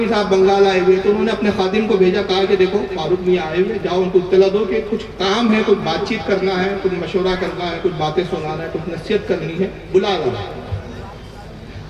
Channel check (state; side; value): identical; both; correlation 1.00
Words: صاحب بنگال آئے ہوئے، تو انہوں نے اپنے خادم کو بھیجا، کہا کہ دیکھو فاروق میاں آئے ہوئے، جاؤ ان کو اطلاع دو کہ کچھ کام ہے، کچھ بات چیت کرنا ہے، کچھ مشورہ کرنا ہے، کچھ باتیں سنانا ہے، کچھ نصیحت کرنی ہے، بلا لاؤ۔